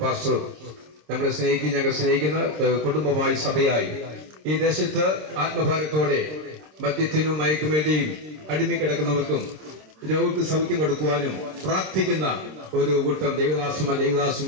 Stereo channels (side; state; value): left; late; 26 ms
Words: പാസ്റ്റർ നമ്മളെ ഞങ്ങൾ സ്നേഹിക്കുന്ന കുടുംബമായി സഭയായി ഈ ദേശത്ത് ആത്മഭാരത്തോടെ മദ്യത്തിനും മയക്കുമേടിയും അടിമിക്കിടക്കുന്നവർക്കും രോഗിക്ക് സൗഖ്യം കൊടുക്കുവാനും പ്രാർത്ഥിക്കുന്ന ഒരു കൂട്ടം